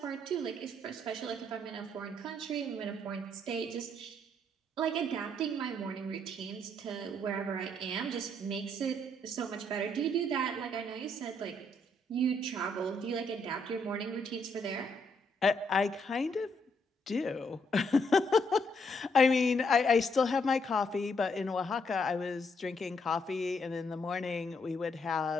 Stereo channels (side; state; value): both; normal; correlation 0.73